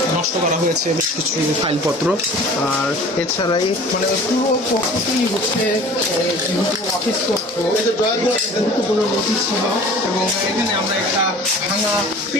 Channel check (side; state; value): both; normal; correlation 0.44